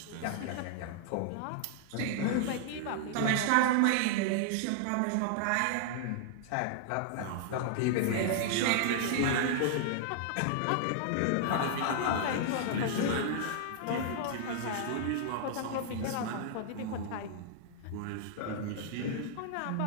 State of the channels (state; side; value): different; both; correlation -0.01